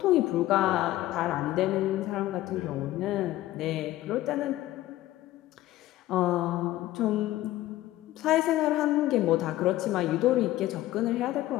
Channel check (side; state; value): right; quieter; 15.5 dB